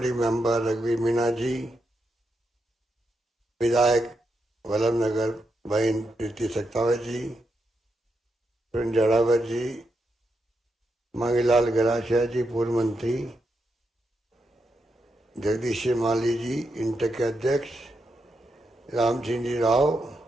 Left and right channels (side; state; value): both; normal; correlation 0.83